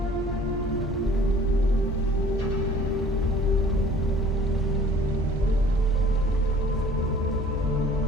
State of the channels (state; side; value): normal; both; correlation 0.51